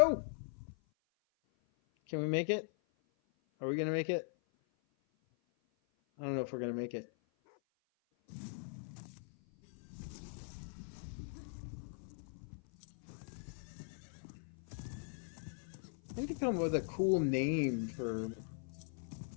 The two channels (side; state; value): right; silent; 51 dB below the other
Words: Can we make it? Are we gonna make it? I don't know if we're gonna make it. I need to come up with a cool name for